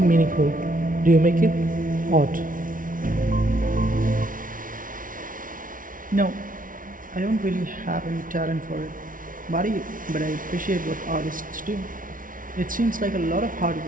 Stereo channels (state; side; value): late; left; 0.39 ms